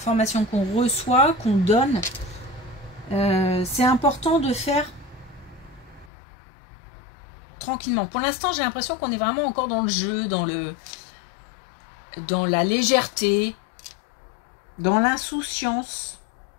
qu'on reçoit, qu'on donne. C'est important de faire tranquillement. Pour l'instant, j'ai l'impression qu'on est vraiment encore dans le jeu, dans la légèreté, dans l'insouciance.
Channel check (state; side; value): drops out; right; at 6.1 s